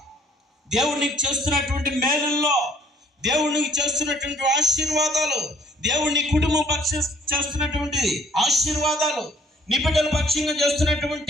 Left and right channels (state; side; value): normal; both; correlation 0.60